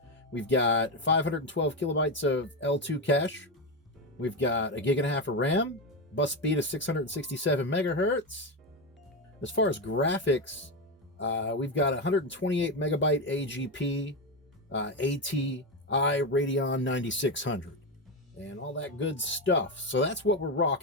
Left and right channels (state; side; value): normal; both; correlation 0.12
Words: We've got 512 kilobytes of L2 cache. We've got 1.5 gigs of RAM. Bus speed is 667 megahertz. As far as graphics, we've got 128 megabyte AGP ATI Radeon 9600 and all that good stuff. So that's what we're